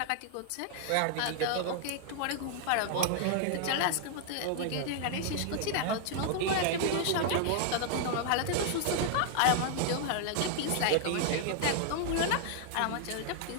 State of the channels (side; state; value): both; different; correlation -0.01